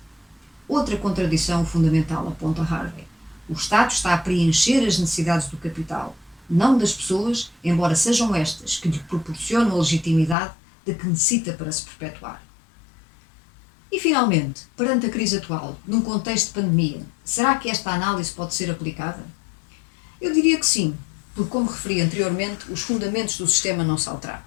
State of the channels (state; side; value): drops out; right; at 10.4 s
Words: Outra contradição fundamental, aponta Harvey. O Estado está a preencher as necessidades do capital, não das pessoas, embora sejam estas que lhe proporcionam a legitimidade de que necessita para se perpetuar. E, finalmente, perante a crise atual, num contexto de pandemia, será que esta análise pode ser aplicada? Eu diria que sim, porque, como referi anteriormente, os fundamentos do sistema não se alteraram.